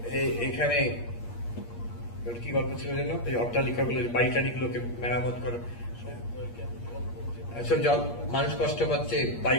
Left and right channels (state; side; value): late; right; 8.5 ms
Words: এখানে কি গল্প ছিল যেন, এই অট্টালিকাগুলো, বাড়িটাড়িগুলোকে মেরামত করো, সব মানুষ কষ্ট পাচ্ছে,